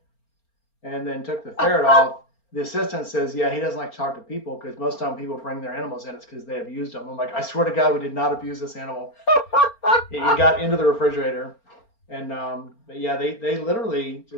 and then took the ferret off. The assistant says, "Yeah, he doesn't like to talk to people because most of the time people bring their animals in, it's because they abused them." I'm like, "I swear to God, we did not abuse this animal." He got into the refrigerator, and but yeah, they literally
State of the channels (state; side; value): late; right; 4.4 ms